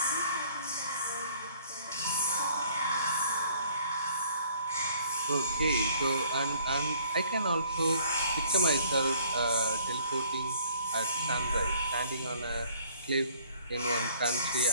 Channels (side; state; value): both; inverted; correlation -0.57